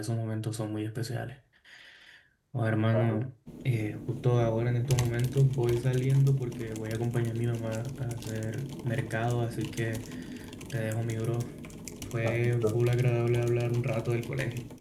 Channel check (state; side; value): identical; both; correlation 1.00